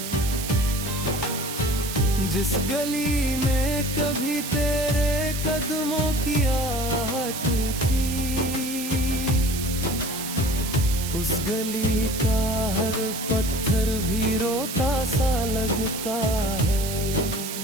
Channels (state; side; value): noise; right; hiss, 7 dB below the sound